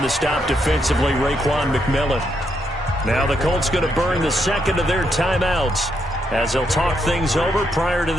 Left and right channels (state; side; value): normal; both; correlation 0.78